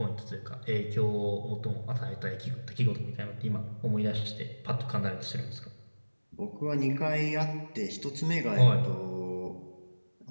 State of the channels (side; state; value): both; inverted; correlation -1.00